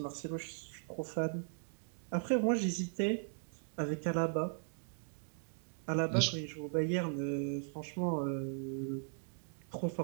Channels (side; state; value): left; silent; digital silence